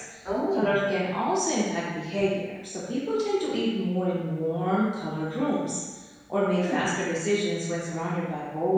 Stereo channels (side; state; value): both; identical; correlation 1.00